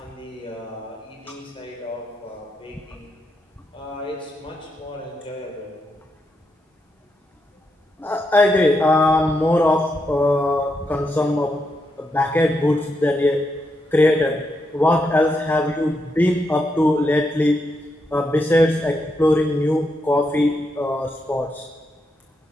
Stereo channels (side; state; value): both; normal; correlation 0.82